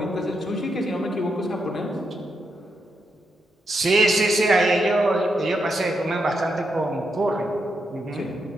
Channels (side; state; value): both; normal; correlation 0.82